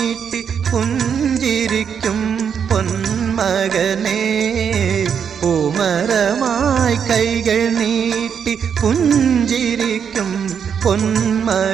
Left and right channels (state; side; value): quieter; left; 7.4 dB